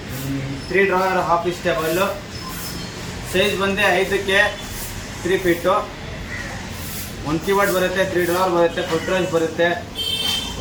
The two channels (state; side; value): identical; both; correlation 1.00